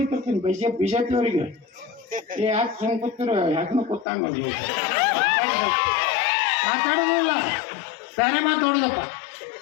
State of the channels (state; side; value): drops out; right; at 4.0 s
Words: ಬಿಜೆಪಿ ಅವರಿಗೆ. ಯಾಕೆ ಹಿಂಗೆ ಕೂತಿರೋ, ಯಾಕಂದ್ರೆ ಕೂತಂಗ ಮಾತಾಡೋದಿಲ್ಲ, ಬೇರೆ ಮಾತಾಡೋದಪ್ಪ.